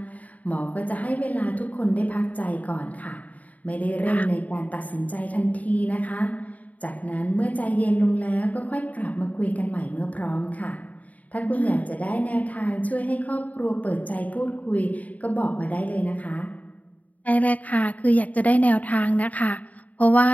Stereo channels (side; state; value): right; late; 0.072 ms